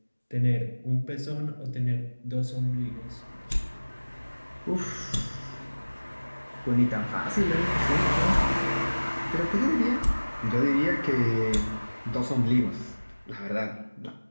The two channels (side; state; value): both; inverted; correlation -1.00